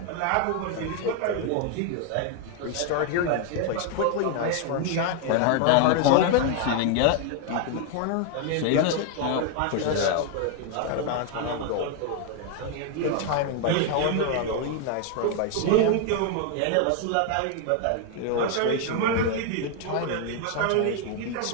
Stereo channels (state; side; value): different; both; correlation 0.00